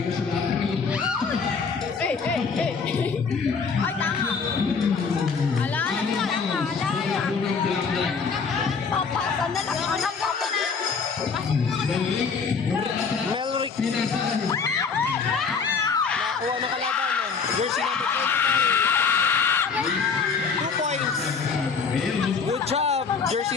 Ay, tama. Ala, papasan na lang. Anak ko na. Melrick. Nakuha ng kalaban. Jersey number 25. 2 points. Good job.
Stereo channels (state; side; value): quieter; right; 5.4 dB